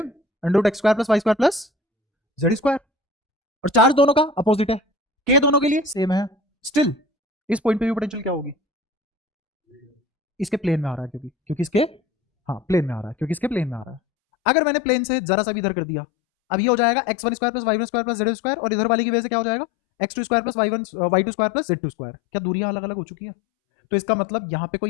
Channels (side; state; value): right; drops out; at 14.0 s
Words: under root X square plus Y square plus Z square. और चार्ज दोनों का अपोजिट है, के दोनों के लिए सेम है, स्टिल इस पॉइंट पे भी पोटेंशियल क्या होगी? इसके प्लेन में आ रहा है, क्योंकि इसके, हाँ प्लेन में आ रहा है, क्योंकि इसके प्लेन में आ रहा है। अगर मैंने प्लेन से जरा सा भी इधर कर दिया, अब ये हो जाएगा x1 square plus y1 square plus z square, और इधर वाले की वजह से क्या हो जाएगा? x2 square plus y2 square plus z2 square. क्या दूरियां अलग अलग हो चुकी है? तो इसका मतलब यहाँ पे